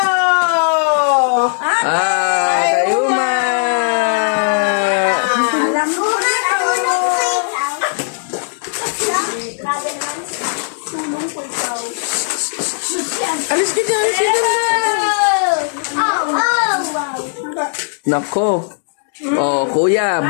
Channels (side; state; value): right; silent; digital silence